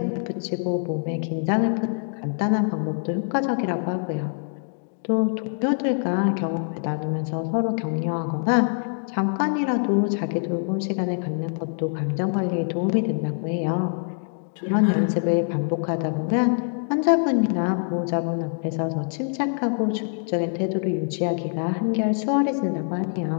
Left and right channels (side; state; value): right; silent; 62 dB below the other